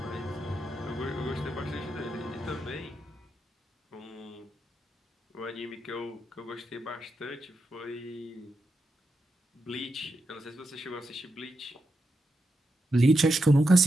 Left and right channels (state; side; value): normal; both; correlation 0.86